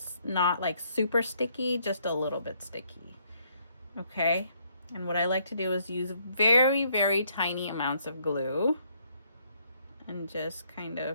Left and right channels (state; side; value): inverted; both; correlation -0.69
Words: not like super sticky, just a little bit sticky. Okay. And what I like to do is use very, very tiny amounts of glue and just kind